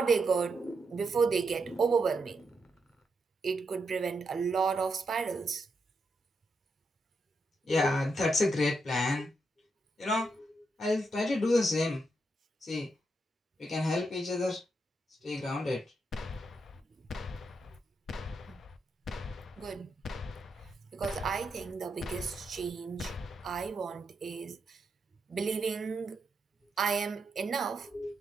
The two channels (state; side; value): normal; both; correlation 0.82